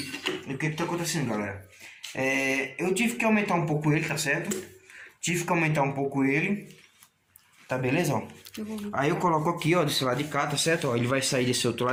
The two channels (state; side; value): identical; both; correlation 1.00